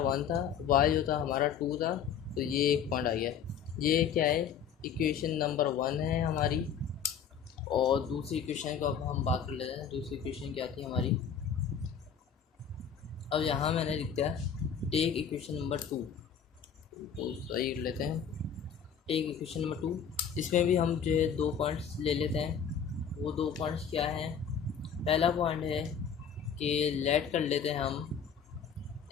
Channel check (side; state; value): right; quieter; 7.5 dB